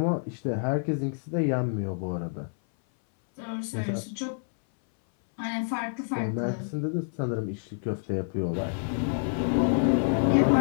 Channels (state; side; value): silent; right; 59 dB below the other